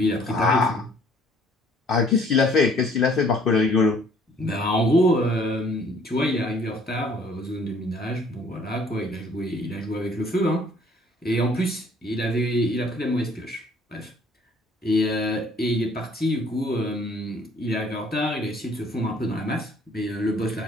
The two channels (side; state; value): both; normal; correlation 0.58